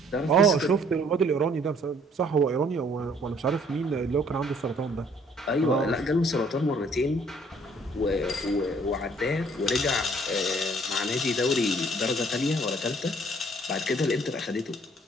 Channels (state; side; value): normal; both; correlation 0.60